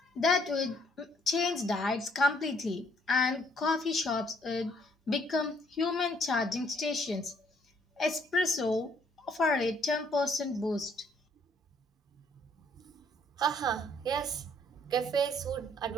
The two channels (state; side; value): normal; both; correlation 0.65